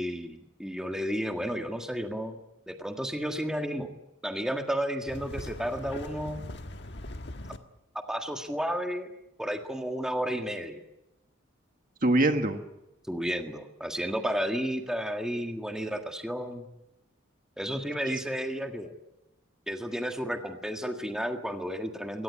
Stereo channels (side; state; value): both; normal; correlation 0.78